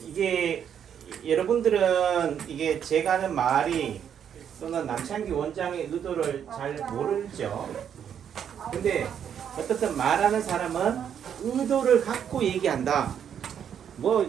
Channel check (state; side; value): quieter; left; 8.6 dB